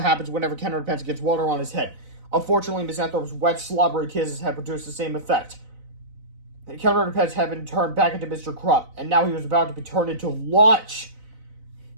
happens whenever Ken Underpants gets water on his head. Unfortunately, Miss Anthrope's wet, slobbery kisses had produced the same effect. Ken Underpants had been turned back into Mr. Krupp, and now he was about to be turned into lunch.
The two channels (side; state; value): left; late; 4.0 ms